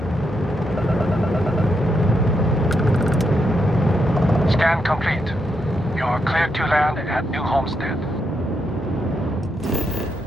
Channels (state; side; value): normal; both; correlation 0.81